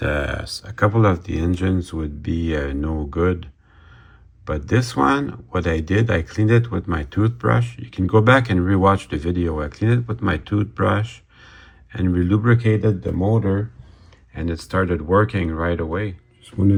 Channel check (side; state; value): both; identical; correlation 1.00